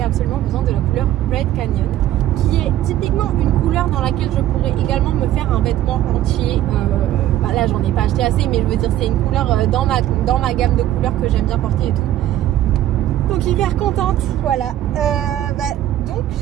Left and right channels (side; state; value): left; quieter; 12.9 dB